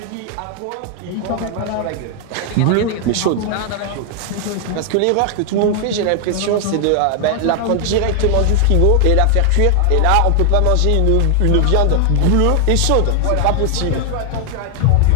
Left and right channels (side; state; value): both; different; correlation 0.00